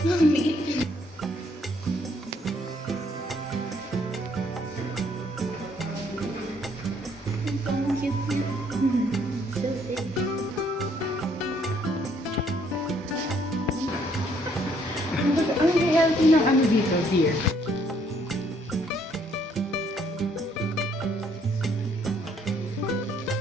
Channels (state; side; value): normal; both; correlation 0.66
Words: Ang healthy ng ano dito, deer.